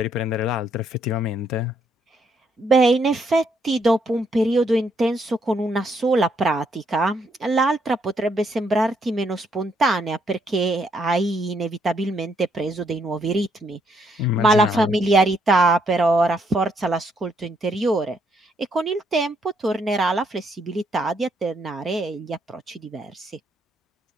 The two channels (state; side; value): normal; both; correlation 0.73